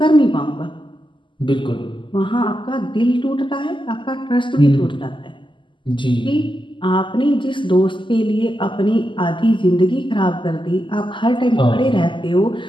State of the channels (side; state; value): right; late; 0.24 ms